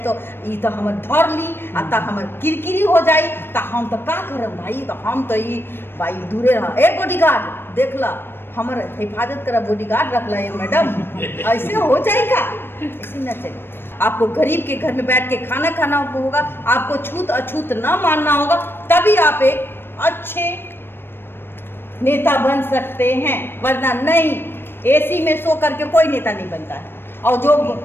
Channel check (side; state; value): right; late; 0.10 ms